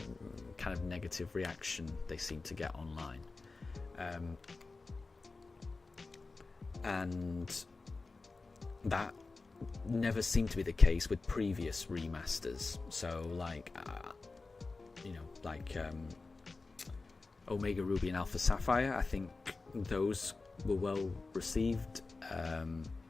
kind of negative reaction they seem to get online. And that never seemed to be the case with previous remasters. So, like, Omega Ruby and Alpha Sapphire, I think those were well received.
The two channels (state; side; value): quieter; right; 3.8 dB